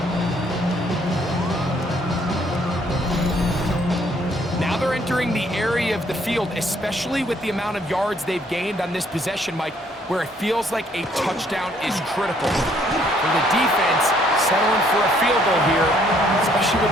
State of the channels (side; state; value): both; normal; correlation 0.65